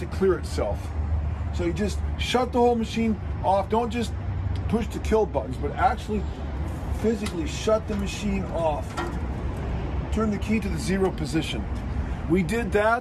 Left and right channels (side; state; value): both; identical; correlation 1.00